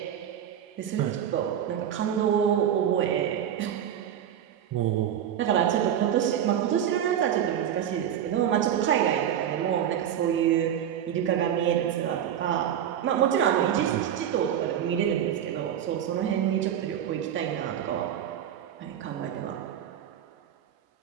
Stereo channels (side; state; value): left; quieter; 9.8 dB